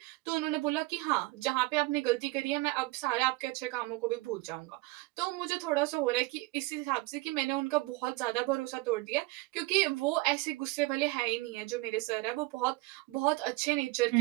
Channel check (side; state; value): left; quieter; 21.8 dB